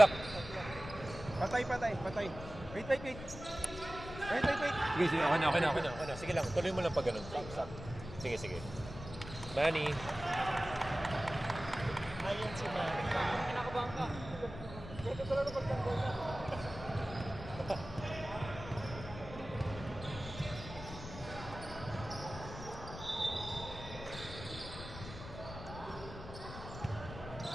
Patay. Wait. Sige, okay na. Sige lang, tuloy mo lang pag ganun. Sige. Manny. Ayan si Manny. Kinakabahan ka. Ito talaga pagtanggol na.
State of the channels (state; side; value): noise; left; rumble, 12 dB below the sound